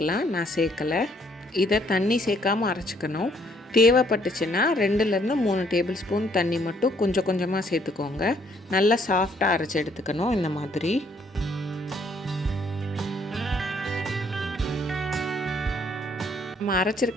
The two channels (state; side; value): normal; both; correlation 0.66